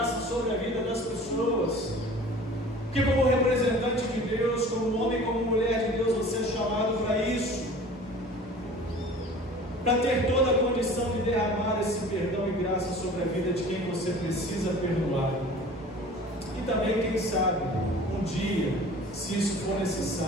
sobre a vida das pessoas. Que como representante de Deus, como homem, como mulher de Deus, você é chamado para isso, para ter toda a condição de derramar esse perdão e graça sobre a vida de quem você precisa perdoar. E também, quem sabe, um dia, se isso for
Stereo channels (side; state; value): both; normal; correlation 0.44